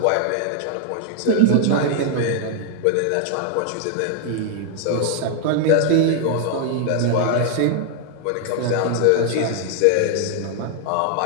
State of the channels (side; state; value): both; different; correlation 0.00